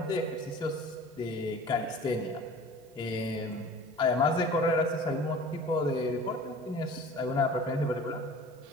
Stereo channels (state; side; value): normal; both; correlation 0.43